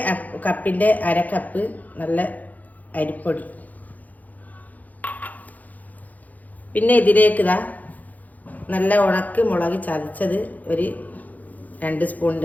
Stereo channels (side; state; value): right; late; 0.080 ms